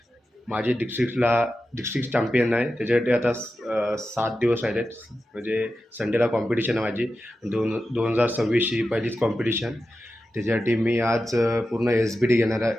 माझी डिस्ट्रिक्ट चॅम्पियन आहे. त्याच्यासाठी आता 7 दिवस राहिले आहेत. म्हणजे संडेला कॉम्पिटिशन आहे माझी. 2026ची पहिलीच कॉम्पिटिशन. त्याच्यासाठी मी आज पूर्ण SBD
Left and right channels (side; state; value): both; normal; correlation 0.92